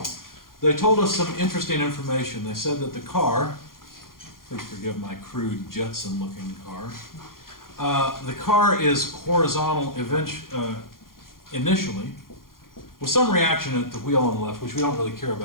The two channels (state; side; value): late; right; 0.91 ms